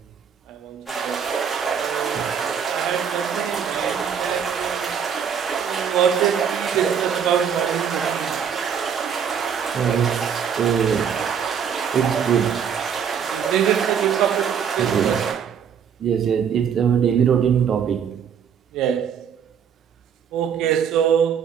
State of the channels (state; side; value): quieter; left; 7.6 dB